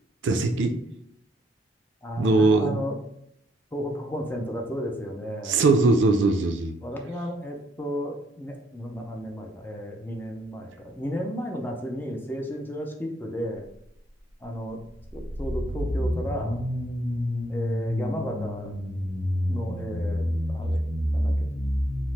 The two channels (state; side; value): normal; both; correlation 0.71